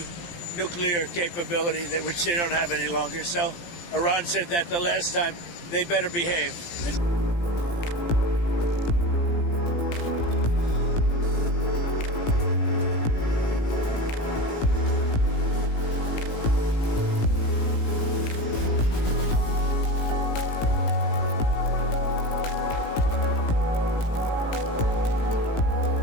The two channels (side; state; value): right; late; 17 ms